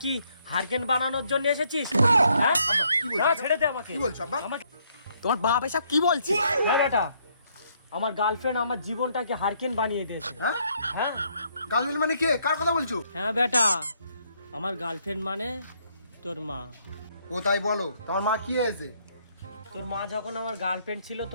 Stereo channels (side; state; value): both; inverted; correlation -0.70